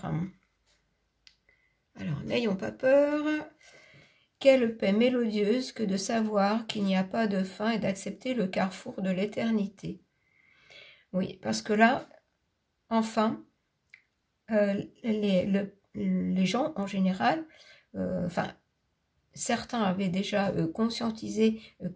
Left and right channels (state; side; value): identical; both; correlation 1.00